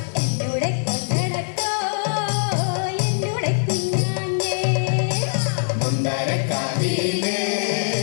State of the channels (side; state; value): right; silent; digital silence